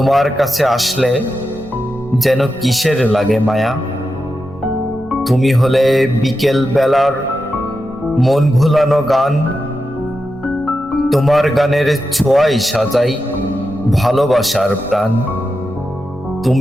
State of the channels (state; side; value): normal; both; correlation 0.89